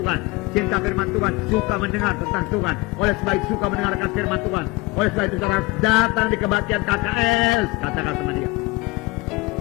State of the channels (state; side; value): quieter; right; 22.7 dB